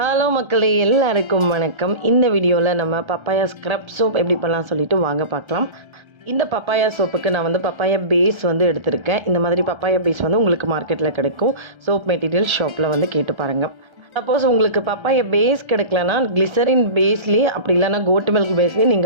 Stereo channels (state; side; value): late; left; 1.3 ms